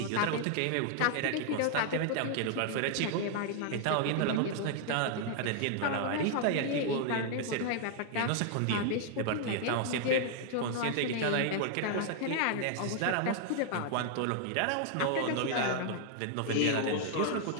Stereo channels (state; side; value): different; both; correlation 0.00